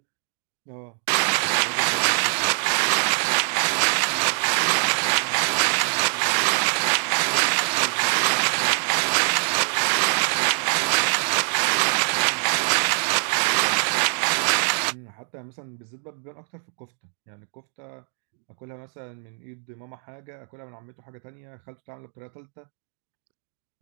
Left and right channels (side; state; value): left; silent; 61 dB below the other